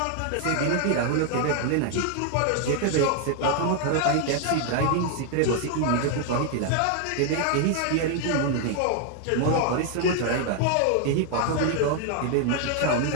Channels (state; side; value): different; both; correlation 0.00